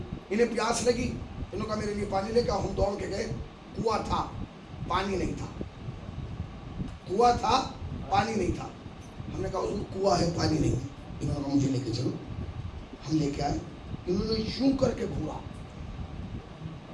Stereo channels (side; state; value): both; identical; correlation 1.00